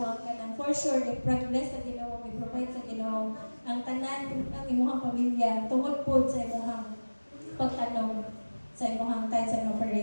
ang kanang for sure i-progress sa Ginoo, i-provide sa Ginoo ang tanan ang imong pamilya tungod pud sa imong pagtanong sa imong tithes and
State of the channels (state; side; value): inverted; both; correlation -1.00